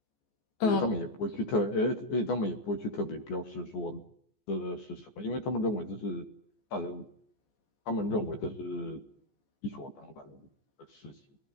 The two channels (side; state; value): right; late; 14 ms